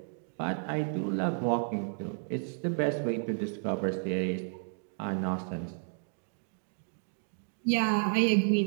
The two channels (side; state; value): left; silent; digital silence